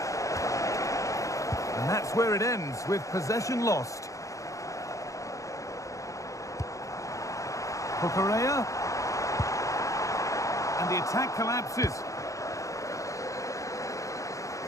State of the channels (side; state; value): right; late; 0.16 ms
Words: And that's where it ends, with possession lost. Correa, and the attack collapses.